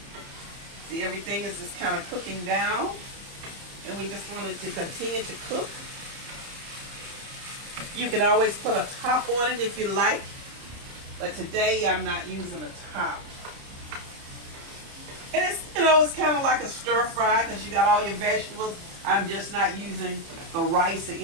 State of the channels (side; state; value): left; late; 30 ms